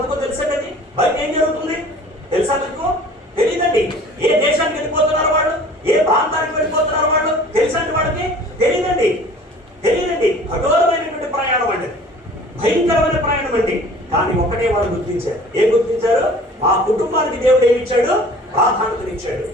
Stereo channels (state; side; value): normal; both; correlation 0.47